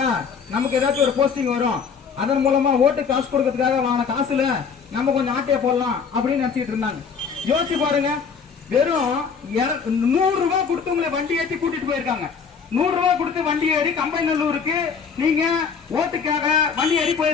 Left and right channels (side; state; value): right; quieter; 6.0 dB